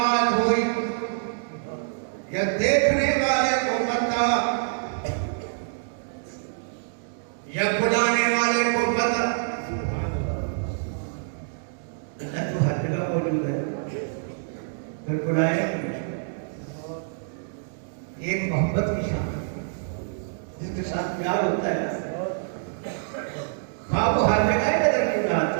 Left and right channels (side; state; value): left; silent; digital silence